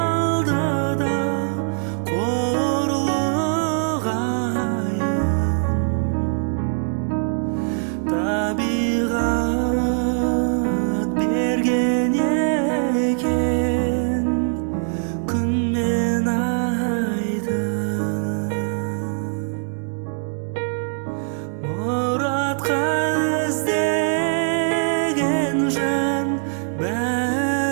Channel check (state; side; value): silent; left; 62 dB below the other